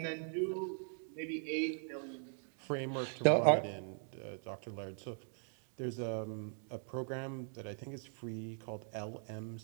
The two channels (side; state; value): left; silent; 51 dB below the other